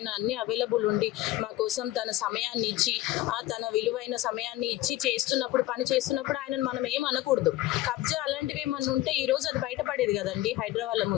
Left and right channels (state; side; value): quieter; right; 15.8 dB